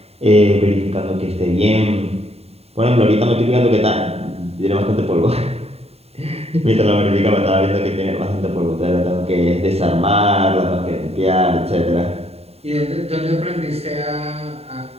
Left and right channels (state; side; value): late; left; 0.30 ms